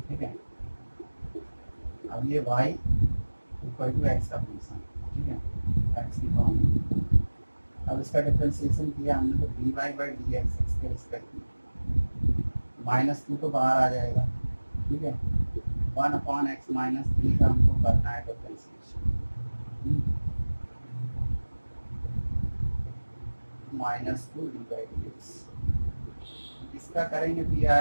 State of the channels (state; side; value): inverted; both; correlation -1.00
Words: ठीक है। अब ये y इक्वल टू एक्स का फंक्शन, ठीक है, एक्स की फॉर्म में। अब इसका डिफरेंशिएशन किया हमने, तो d y by d x x के रिस्पेक्ट में, -2 तो बाहर आ जाएगा, ठीक है, 1/x -3 का हमको करना है differentiation, -2 d by d x. इसका करेंगे तो ये